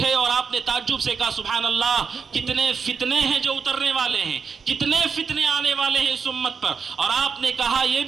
اور آپ نے تعجب سے کہا سبحان اللہ، کتنے فتنے ہیں جو اترنے والے ہیں، کتنے فتنے آنے والے ہیں اس امت پر، اور آپ نے کہا یہ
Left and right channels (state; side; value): quieter; left; 5.9 dB